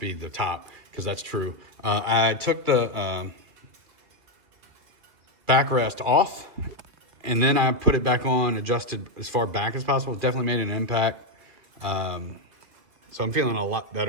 the top, because that's true. I took the backrest off, and then I put it back on, adjusted as far back as possible. Definitely made an impact. So I'm feeling a lot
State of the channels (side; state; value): left; late; 2.8 ms